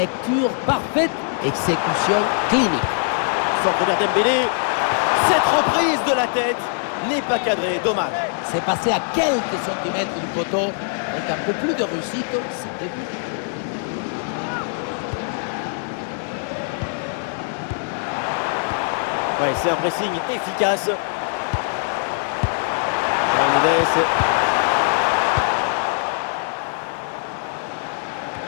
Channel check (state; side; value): silent; right; 59 dB below the other